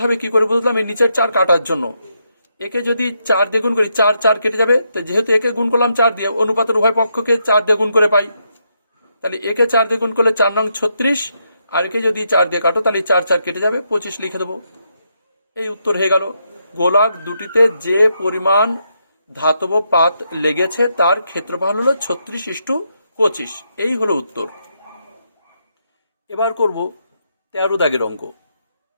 হবে, কি করে বুঝলাম? এই নিচের 4 কাটার জন্য। একে যদি 4 দিয়ে গুণ করি, 4 4 কেটে যাবে। তো যেহেতু একে গুণ করলাম 4 দিয়ে, অনুপাতের উভয় পক্ষকে 4 দিয়ে গুণ করে পাই। তাহলে একে 4 দিয়ে গুণ করলে 4 নং 36, আর একে যদি 4 দিয়ে কাটো, তাহলে 4 4 কেটে যাবে, 25 লিখে দেবো। এই উত্তর হয়ে গেল। গোলক দুটিতে যে পরিমাণ ধাতব পাত লেগেছে তার ক্ষেত্রফল হলো 36:25। এই হলো উত্তর। এবার করব 13 দাগের অঙ্ক।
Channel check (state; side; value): inverted; both; correlation -0.79